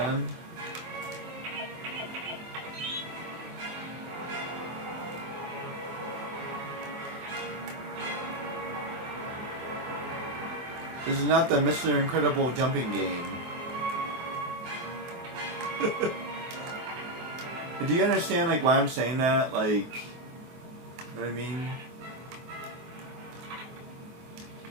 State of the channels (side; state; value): left; late; 24 ms